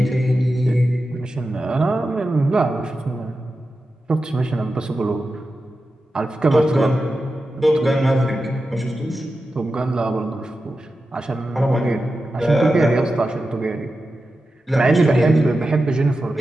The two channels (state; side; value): normal; both; correlation 0.91